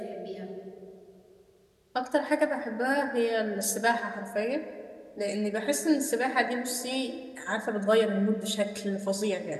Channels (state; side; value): identical; both; correlation 1.00